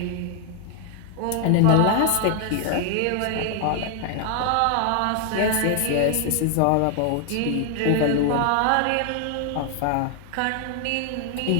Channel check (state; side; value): different; both; correlation 0.00